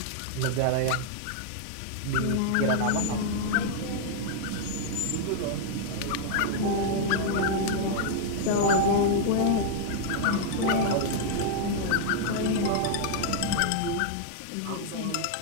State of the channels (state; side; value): different; both; correlation -0.01